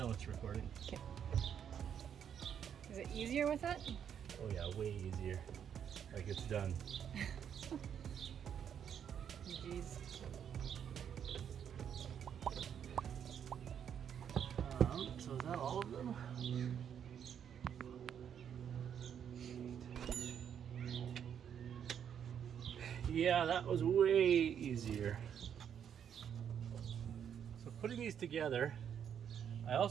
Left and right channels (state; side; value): quieter; left; 8.5 dB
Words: it's recording. Okay. Is it easier with that? Oh yeah, way easier. Like it's done. Jeez. So is that all of them? Yeah, that was way easier. So putting these together, I